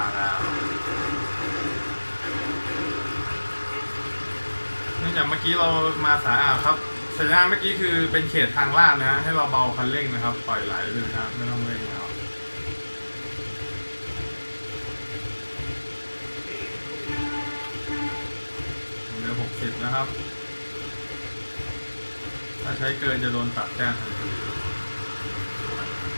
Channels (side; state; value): both; inverted; correlation -1.00